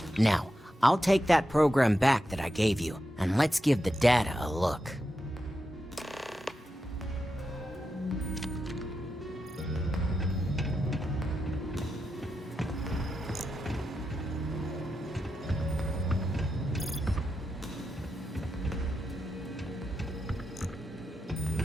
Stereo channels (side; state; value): both; normal; correlation 0.88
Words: Now, I'll take that program back that I gave you, and let's give the data a look.